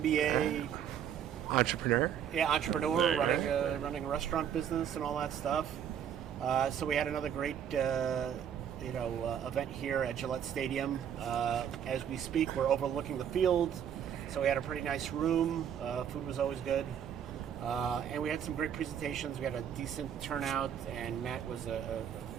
entrepreneur. Yeah, entrepreneur, running a restaurant business and all that stuff. So we had another great, event here at Gillette Stadium. As we speak, we're overlooking the field, so we had a pretty nice room. Food was always good, and we had some great presentations. We had a decent turnout, and Matt was, of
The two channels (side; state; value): left; quieter; 8.9 dB